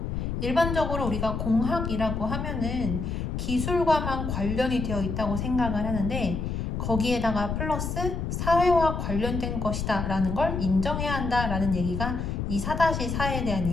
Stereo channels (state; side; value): noise; left; rumble, 3 dB below the sound